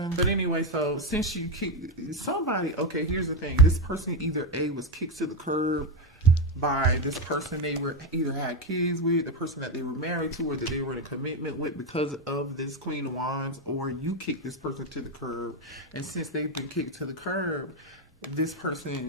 But anyway, so since you kicked somebody, okay, here's the thing. This person either A, was kicked to the curb by this person they were either had kids with, the person that they were married to, or that they were in a commitment with because of this Queen of Wands, or you kicked this person to the curb. And since they've been kicked to the curb, this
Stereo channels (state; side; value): normal; both; correlation 0.07